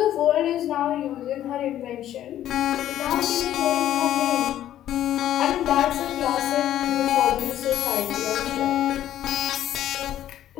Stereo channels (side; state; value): right; quieter; 12.0 dB